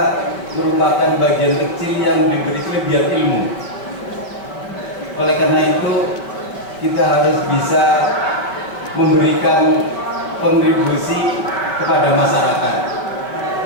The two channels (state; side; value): late; right; 5.1 ms